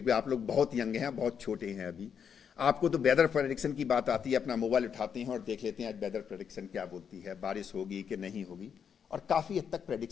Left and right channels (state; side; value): quieter; right; 7.4 dB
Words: आप लोग बहुत young हैं, बहुत छोटे हैं अभी. आपको तो वेदर प्रेडिक्शन की बात आती है, अपना मोबाइल उठाते हैं और देख लेते हैं आज वेदर प्रेडिक्शन क्या बोलती है, बारिश होगी कि नहीं होगी, और काफ़ी हद तक